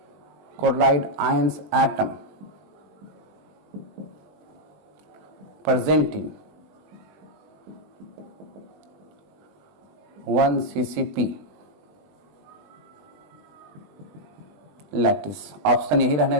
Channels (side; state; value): left; late; 20 ms